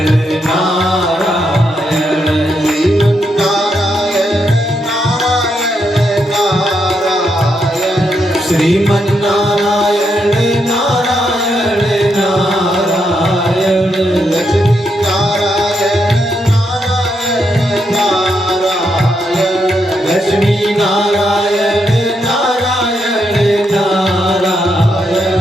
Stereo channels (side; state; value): both; normal; correlation 0.80